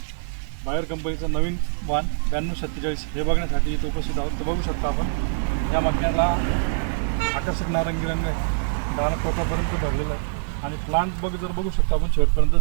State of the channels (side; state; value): left; silent; digital silence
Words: बायर कंपनीचं नवीन वाण 9247 हे बघण्यासाठी इथे उपस्थित आहोत. तर बघू शकता आपण या मक्याला आकर्षक नारंगी रंग आहे, दाना टोकापर्यंत भरलेलं आहे आणि प्लांट जर बघू शकता आपण शेवटपर्यंत